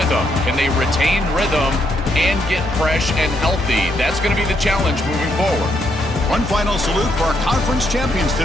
Can they retain rhythm and get fresh and healthy? That's going to be the challenge moving forward. One final salute for our conference champions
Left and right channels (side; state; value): both; normal; correlation 0.76